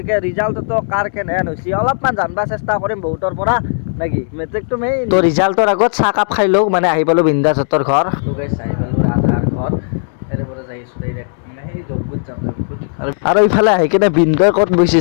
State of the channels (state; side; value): silent; right; digital silence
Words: ৰিজাল্টতো কাৰ কেনেহেন হৈছে অলপমান জানিব চেষ্টা কৰিম বহুতৰ পৰা নাকি মেট্ৰিকটো মেইন তো ৰিজাল্টৰ আগত চাহ কাপ খাই লওঁ মানে আহি পালোঁ বিন্দাছ হতৰ ঘৰ তো গাইছ আহি পালোঁ ৰাজহাৰ ঘৰ এৰে পৰা যাই আছোঁ ডাইৰেক্ট মানে সেই যজ্ঞত যাম আৰু ইফালে আহি কিনে বিনগৈ ক'ত বহিছে